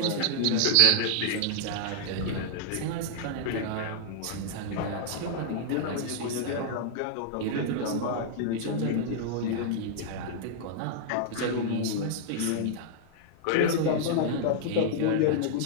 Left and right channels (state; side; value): different; both; correlation -0.01